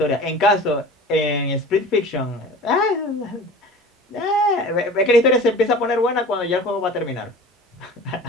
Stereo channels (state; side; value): normal; both; correlation 0.39